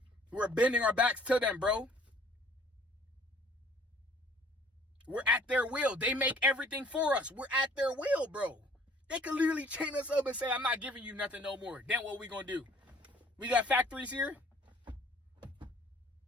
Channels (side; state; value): both; normal; correlation 0.55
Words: We're bending our backs to them, bro. We're at their will. They make everything for us. We're at their will, bro. They could literally chain us up and say, I'm not giving you nothing no more. Then what we gonna do? We got factories here?